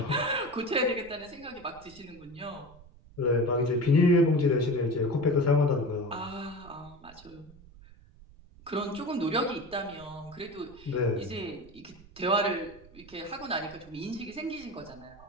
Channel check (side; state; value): right; noise; rumble, 22 dB below the sound